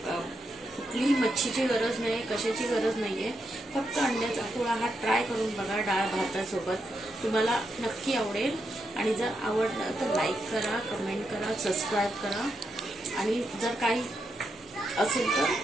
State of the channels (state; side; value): normal; both; correlation 0.83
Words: कुठलीही मच्छीची गरज नाही, कशाची गरज नाहीये. फक्त अंड्याचा पोळा हा ट्राय करून बघा डाळ भातासोबत, तुम्हाला नक्की आवडेल. आणि जर आवडलं तर लाईक करा, कमेंट करा, सबस्क्राईब करा आणि जर काही असेल तर